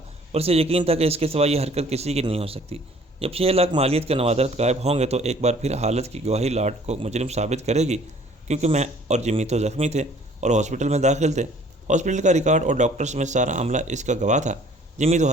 اور اسے یقین تھا کہ اس کے سوا یہ حرکت کسی کی نہیں ہو سکتی۔ جب 6 لاکھ مالیت کے نوادرات غائب ہوں گے تو ایک بار پھر حالت کی گواہی لاٹ کو مجرم ثابت کرے گی، کیونکہ میں اور جمی تو زخمی تھے اور ہاسپٹل میں داخل تھے۔ ہاسپٹل کا ریکارڈ اور ڈاکٹرز میں سارا عملہ اس کا گواہ تھا۔ جمی تو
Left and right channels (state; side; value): normal; both; correlation 0.55